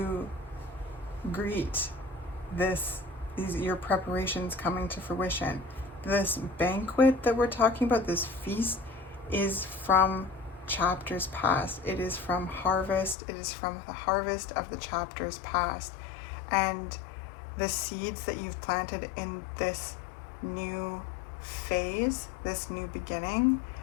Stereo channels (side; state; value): right; drops out; at 13.2 s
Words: greet your preparations coming to fruition. This banquet that we're talking about, this feast, is from chapters past. It is from harvest. It is from the harvest of the chapters past. And the seeds that you've planted in this new phase, this new beginning,